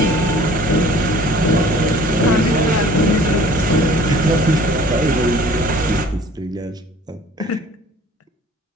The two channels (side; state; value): both; normal; correlation 0.50